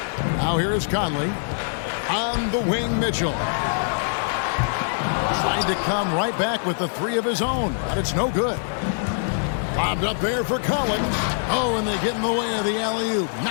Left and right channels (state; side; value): silent; right; digital silence